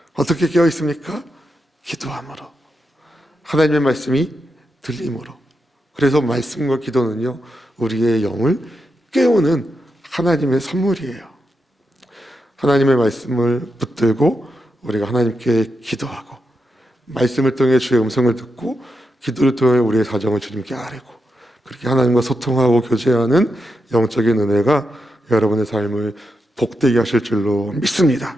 어떻게 깨어 있습니까? 기도함으로, 하나님의 말씀이 들림으로. 그래서 말씀과 기도는요, 우리의 영을 깨우는 하나님의 선물이에요. 하나님의 말씀을 붙들고 우리가 하나님께 기도하고, 말씀을 통해 주의 음성을 듣고, 기도를 통해 우리의 사정을 주님께 아뢰고, 그렇게 하나님과 소통하고 교제하는 영적인 은혜가 여러분의 삶을 복되게 하실 줄로 믿습니다.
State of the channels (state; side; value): normal; both; correlation 0.86